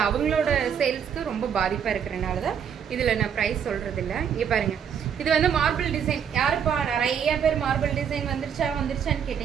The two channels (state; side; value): quieter; left; 7.9 dB